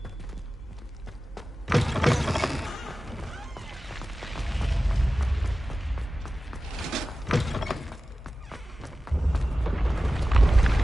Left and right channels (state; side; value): normal; both; correlation 0.95